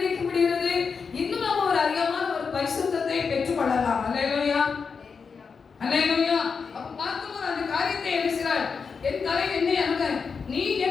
முடிகிறது? இன்னும் நாம் ஒரு அதிகமான ஒரு பரிசுத்தத்தை பெற்றுக்கொள்ளலாம். ஹல்லேலூயா, ஹல்லேலூயா. அப்ப பார்க்கும்போது அந்த காரியத்தை எழுதுகிறார், என் தலை எண்ணெய் அணுக, நீ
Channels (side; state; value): right; quieter; 5.5 dB